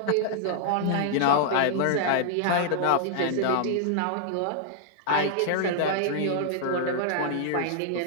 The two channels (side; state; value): both; different; correlation -0.01